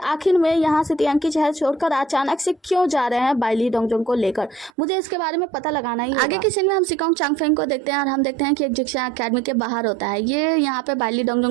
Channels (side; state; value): left; drops out; at 4.7 s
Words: में यहाँ से तियांकी शहर छोड़कर अचानक से क्यों जा रहे हैं बाइली डोंगजोंग को लेकर। मुझे इसके बारे में पता लगाना ही। आगे की सीन में हम सिकोंग चांगफेंग को देखते हैं और हम देखते हैं कि एक जिक्सा अकेडमी के बाहर होता है। ये यहाँ पे बाइली